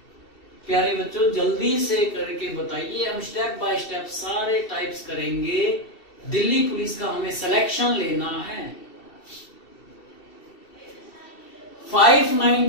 प्यारे बच्चों जल्दी से करके बताइए, हम स्टेप बाय स्टेप सारे टाइप्स करेंगे। दिल्ली पुलिस का हमें सिलेक्शन लेना है।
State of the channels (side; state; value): right; late; 2.7 ms